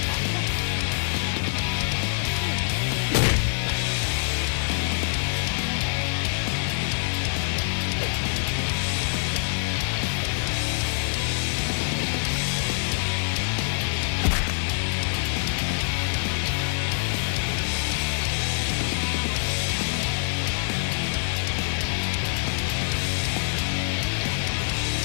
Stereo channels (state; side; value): silent; right; digital silence